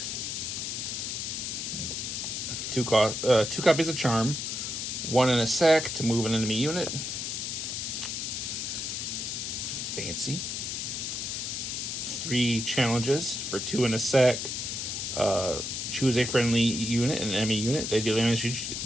2 copies of Charm. 1 and a sack to move an enemy unit. Fancy. 3 challenges for 2 and a sack. Choose a friendly unit and an enemy unit. They deal damage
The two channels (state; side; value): noise; left; hiss, 3 dB below the sound